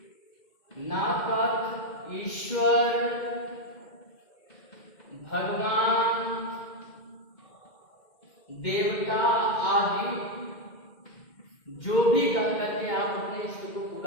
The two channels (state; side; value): late; right; 2.1 ms